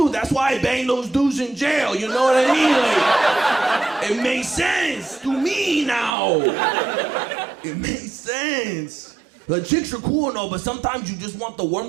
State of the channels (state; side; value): drops out; left; at 6.1 s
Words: that's why I bang those dudes in jail, you know what I mean? Like, it makes sense to me now. It makes sense. Like, chicks are cool and all, but sometimes you just want the